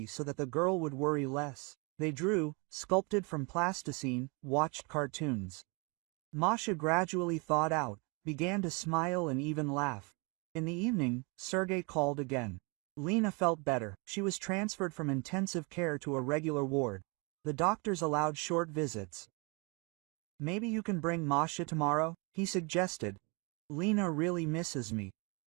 so that the girl would worry less. They drew, sculpted from plasticine, watched cartoons. Masha gradually thawed out, began to smile and even laugh. In the evening, Sergey called again. Lena felt better. She was transferred from intensive care to a regular ward. The doctors allowed short visits. Maybe you can bring Masha tomorrow, he suggested. Lena really misses me.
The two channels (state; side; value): quieter; left; 30.8 dB